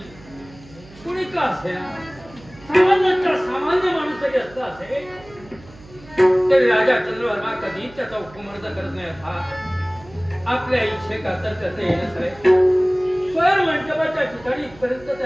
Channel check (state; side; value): noise; right; hum, 22 dB below the sound